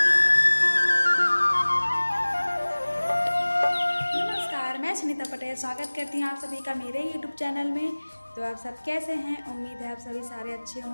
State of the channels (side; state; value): both; inverted; correlation -1.00